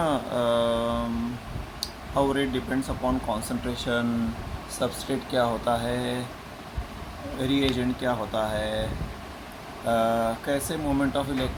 how rate depends upon concentration, substrate क्या होता है, रीएजेंट क्या होता है, कैसे मोमेंट ऑफ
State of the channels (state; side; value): identical; both; correlation 1.00